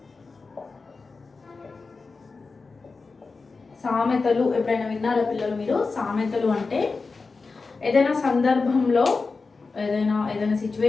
సామెతలు ఎప్పుడైనా విన్నారా పిల్లలు మీరు? సామెతలు అంటే ఏదైనా సందర్భంలో ఏదైనా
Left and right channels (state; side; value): quieter; right; 4.2 dB